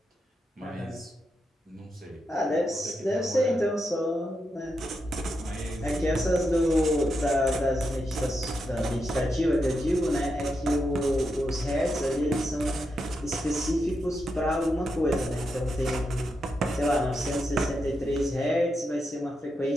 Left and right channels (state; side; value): normal; both; correlation 0.85